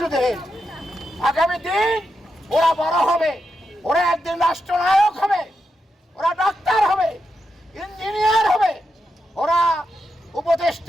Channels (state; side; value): normal; both; correlation 0.86